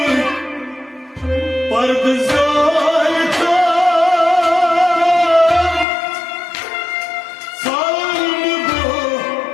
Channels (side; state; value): right; drops out; at 5.9 s